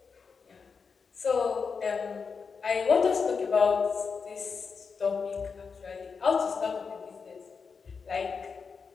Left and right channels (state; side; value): quieter; right; 5.4 dB